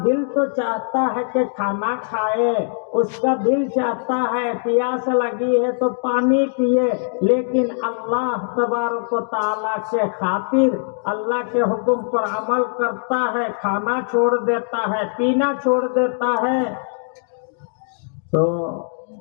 دل تو چاہتا ہے کہ کھانا کھائے، اس کا دل چاہتا ہے پیاس لگی ہے تو پانی پیے، لیکن اللہ تبارک و تعالیٰ کے خاطر اللہ کے حکم پر عمل کرتا ہے، کھانا چھوڑ دیتا ہے، پینا چھوڑ دیتا ہے. تو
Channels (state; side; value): silent; right; digital silence